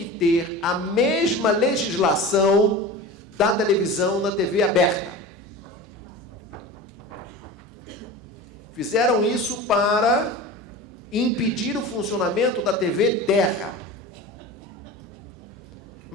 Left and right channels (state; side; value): normal; both; correlation 0.33